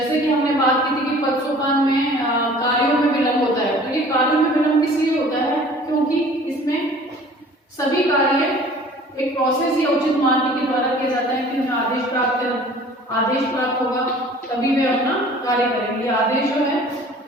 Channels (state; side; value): normal; both; correlation 0.48